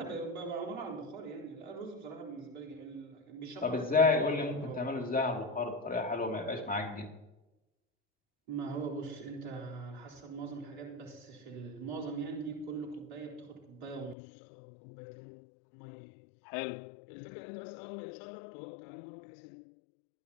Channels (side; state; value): right; drops out; at 14.2 s